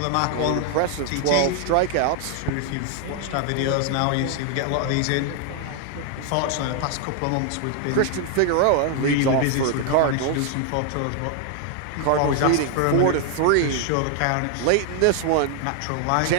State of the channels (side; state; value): both; different; correlation 0.00